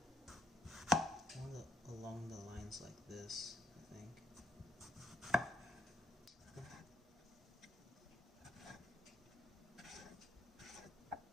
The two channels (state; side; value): normal; both; correlation 0.71